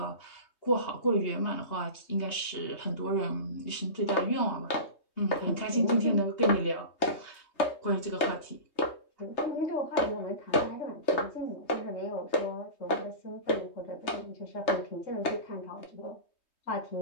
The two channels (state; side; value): late; right; 3.2 ms